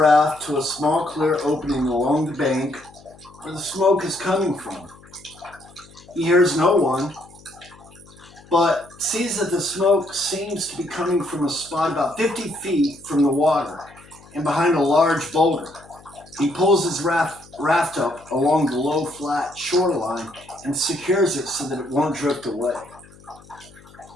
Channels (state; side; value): noise; left; hum, 24 dB below the sound